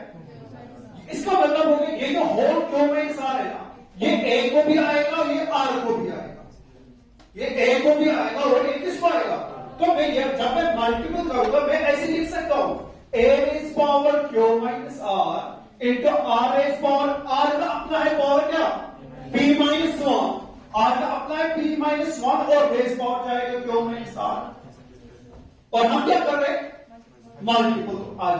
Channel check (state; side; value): identical; both; correlation 1.00